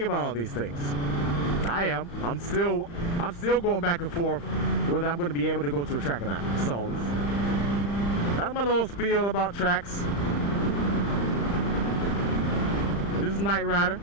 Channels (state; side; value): late; right; 35 ms